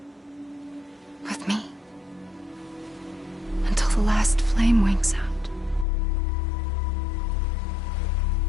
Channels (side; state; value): right; drops out; at 5.9 s